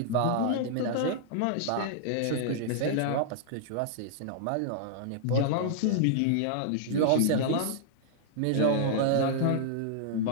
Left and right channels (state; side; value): different; both; correlation -0.01